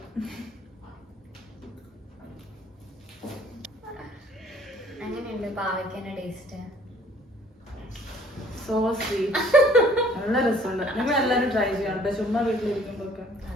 അങ്ങനെയുണ്ട് പാവയ്ക്കന്റെ ടേസ്റ്റ്. So sweet. നല്ല രസമുണ്ട്. നിങ്ങൾ എല്ലാരും ട്രൈ ചെയ്യണം കേട്ടോ, ചുമ്മാ വീട്ടിലിരിക്കുമ്പോഴൊക്കെ.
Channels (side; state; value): both; normal; correlation 0.57